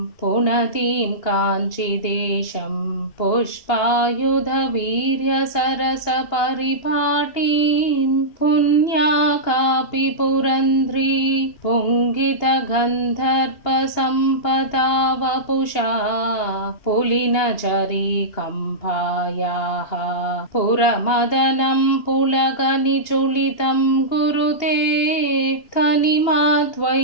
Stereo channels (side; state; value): right; late; 2.8 ms